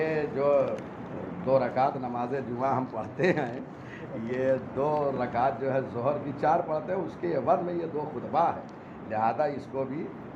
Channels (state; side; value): identical; both; correlation 1.00